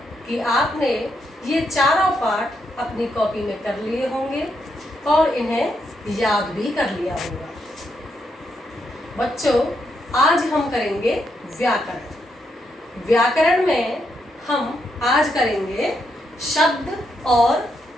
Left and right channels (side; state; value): both; normal; correlation 0.79